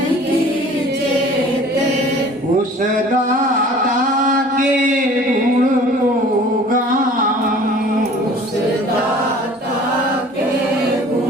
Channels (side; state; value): both; normal; correlation 0.48